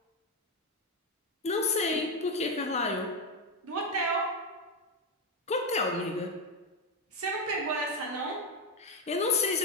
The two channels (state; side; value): normal; both; correlation 0.08